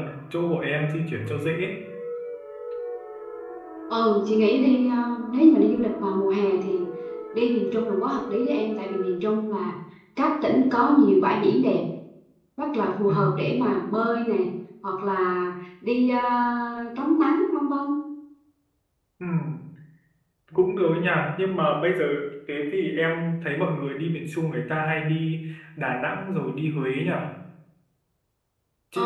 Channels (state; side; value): identical; both; correlation 1.00